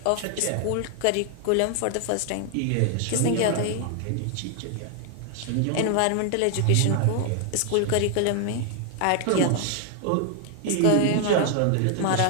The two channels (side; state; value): both; different; correlation 0.00